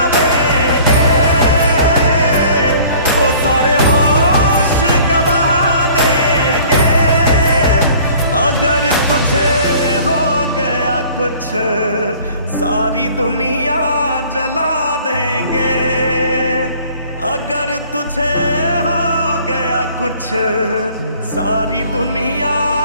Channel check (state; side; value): inverted; both; correlation -0.51